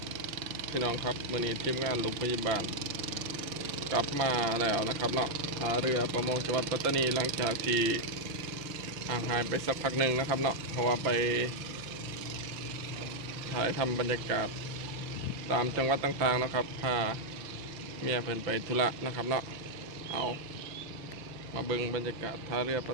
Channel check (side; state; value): left; late; 5.8 ms